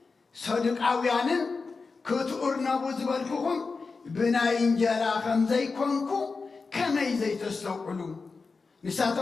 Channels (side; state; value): right; quieter; 4.4 dB